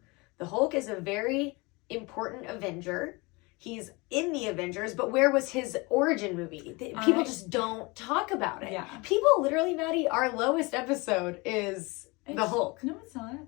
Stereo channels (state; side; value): quieter; right; 25.9 dB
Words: The Hulk is a very important Avenger. He's in the Avengers, but where was his origin movie? People just don't talk about it. Yeah. People literally, Maddie, our lowest episode is the Hulk. No, it's not.